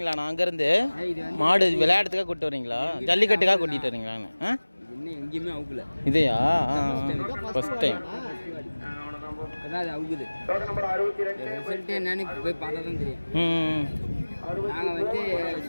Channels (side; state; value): both; inverted; correlation -1.00